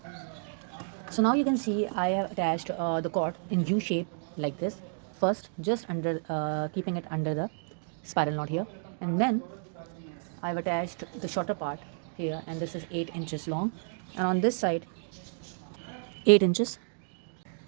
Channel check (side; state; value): left; silent; digital silence